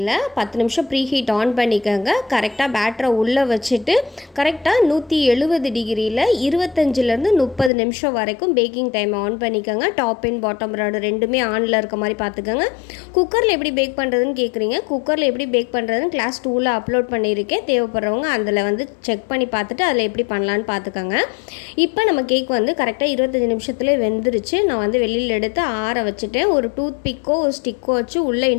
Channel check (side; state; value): right; drops out; at 7.7 s